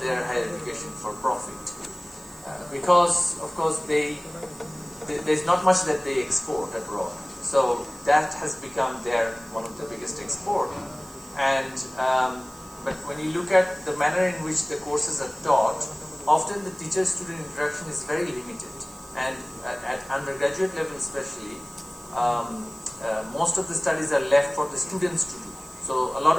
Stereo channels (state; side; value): noise; right; hiss, 22 dB below the sound